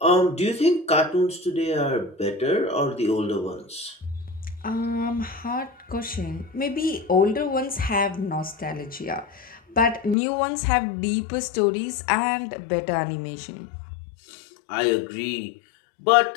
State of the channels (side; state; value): right; drops out; at 10.2 s